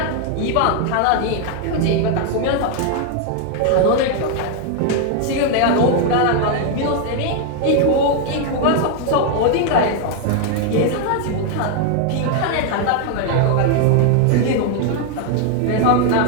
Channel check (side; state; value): both; different; correlation 0.00